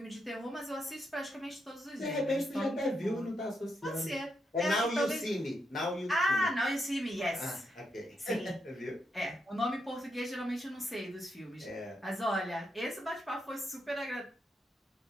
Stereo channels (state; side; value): normal; both; correlation 0.81